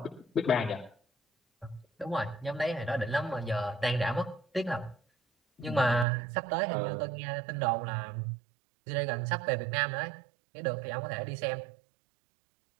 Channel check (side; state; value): left; drops out; at 6.1 s